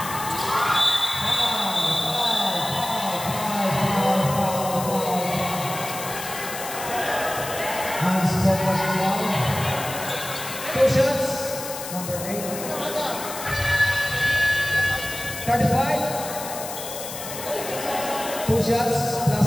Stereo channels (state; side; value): noise; left; hiss, 9 dB below the sound